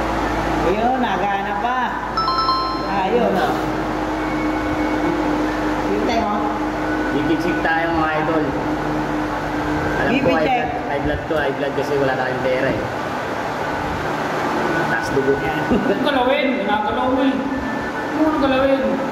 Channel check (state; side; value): identical; both; correlation 1.00